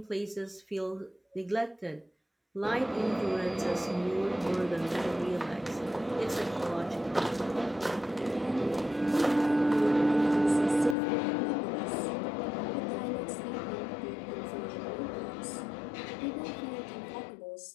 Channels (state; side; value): drops out; right; at 11.0 s